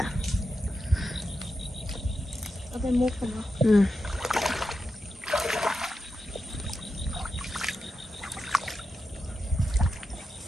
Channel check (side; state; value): both; normal; correlation 0.89